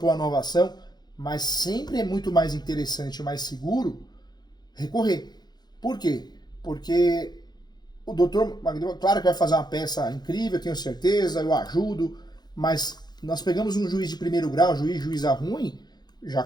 uma nova ação, mas sempre é muito mais interessante e mais seguro recorrer. Por quê? Porque o doutor Magno, claro que vai fazer uma peça incrível, tenho certeza, eu ajudo, mas nós pegamos um juiz de primeiro grau, juíza ruim, já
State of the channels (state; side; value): late; right; 0.20 ms